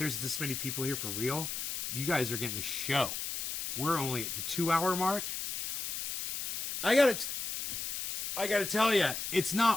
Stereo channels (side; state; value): left; noise; hiss, 4 dB below the sound